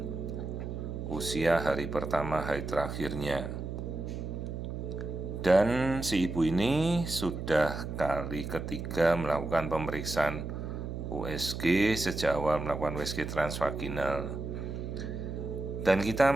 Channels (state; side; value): noise; right; hum, 6 dB below the sound